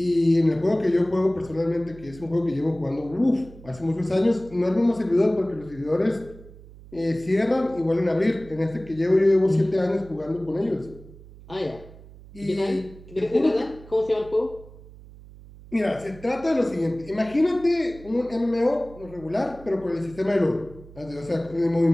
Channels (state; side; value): noise; right; hum, 19 dB below the sound